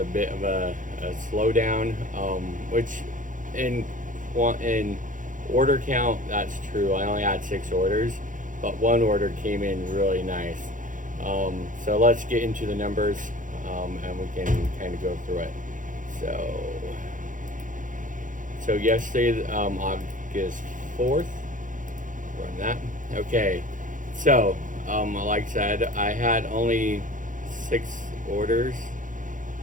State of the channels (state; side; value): late; left; 0.38 ms